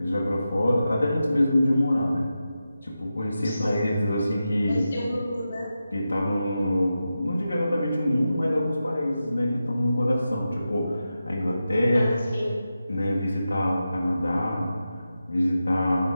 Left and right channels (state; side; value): inverted; both; correlation -0.91